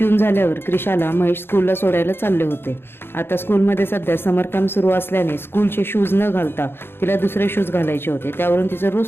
झाल्यावर क्रिशाला महेश स्कूलला सोडायला चालले होते. आता स्कूलमध्ये सध्या समर कॅम्प सुरू असल्याने स्कूलचे शूज न घालता तिला दुसरे शूज घालायचे होते. त्यावरून तिचं रोज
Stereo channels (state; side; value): late; right; 0.11 ms